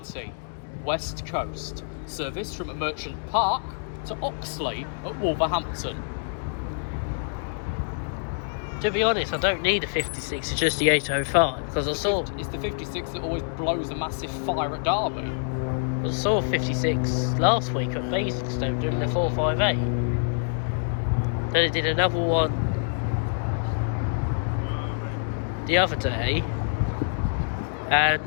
West Coast. Service from Merchant Park to Oxley at Wolverhampton. To be honest, I don't need a 56, it's just the 805, because It's the 56 that always blows a massive fire at Derby. I saw 56 last week at Basingstoke doing the 458. Then I did another one the other day, and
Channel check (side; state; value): right; silent; digital silence